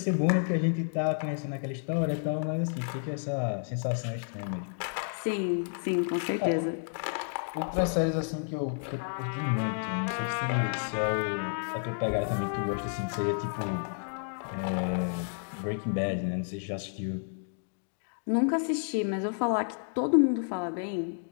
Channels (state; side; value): silent; right; digital silence